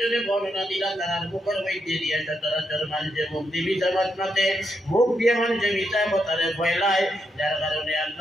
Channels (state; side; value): normal; both; correlation 0.81